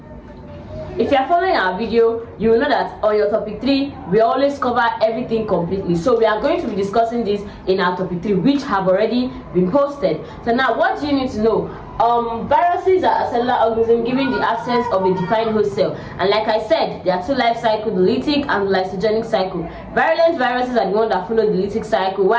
If you are following our video, you will know that on your topic 3, we always cover everything completely. So we are going to be discussing this in our topic 3, which have already been posted. So now, what do you need to know? Viruses are a cellular organism given the absence of a defined host cell, and like I said, there are two life cycles, the lytic and the lysogenic cycle. Virulent viruses are the ones that follow the lytic cycle,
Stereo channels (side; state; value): both; identical; correlation 1.00